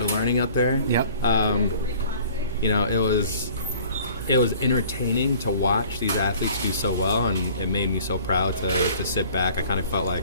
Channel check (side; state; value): both; inverted; correlation -0.50